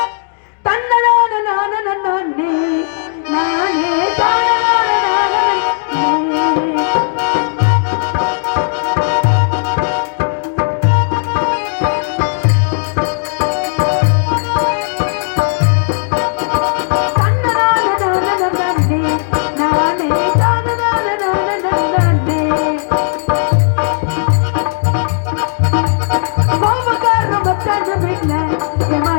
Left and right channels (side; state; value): right; silent; 68 dB below the other